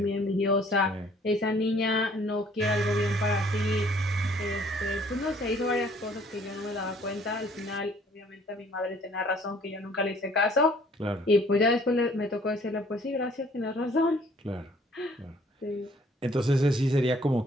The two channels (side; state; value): both; normal; correlation 0.59